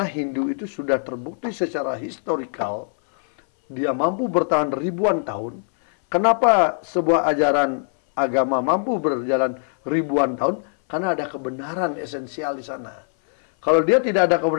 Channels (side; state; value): right; silent; 61 dB below the other